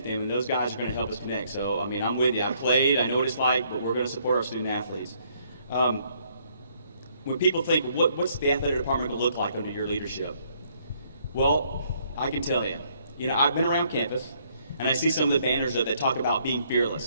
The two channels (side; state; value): both; inverted; correlation -0.67